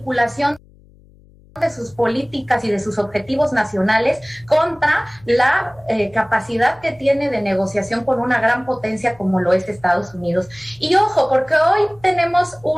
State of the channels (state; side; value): noise; left; hum, 27 dB below the sound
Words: de sus políticas y de sus objetivos nacionales contra la capacidad que tiene de negociación con una gran potencia como lo es Estados Unidos. Y ojo, porque hoy tenemos